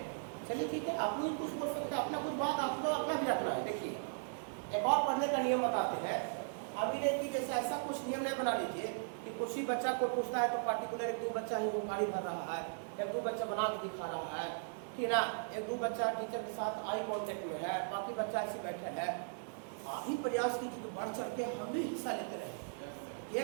चलिए ठीक है, आप लोग कुछ बोल सकते हैं, अपना कुछ बात आप लोग अपना भी रखना है। देखिए एक और पढ़ने का नियम बताते हैं, अभी नहीं कि जैसे ऐसा कुछ नियम नहीं बना लीजिए कि कुछ ही बच्चा को पूछता है तो पार्टिकुलर 1-2 बच्चा ही वो गाड़ी भर रहा है, 1-2 बच्चा बना के दिखा रहा है, ठीक ना, 1-2 बच्चा टीचर के साथ आई कांटेक्ट में है, बाकी बच्चा ऐसे बैठे है। आप ही प्रयास कीजिए बढ़ चढ़ के हम भी हिस्सा लेते रहे।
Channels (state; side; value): silent; left; digital silence